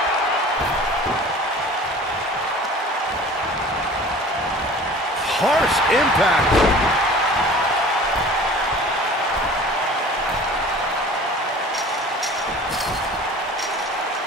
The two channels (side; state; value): both; normal; correlation 0.44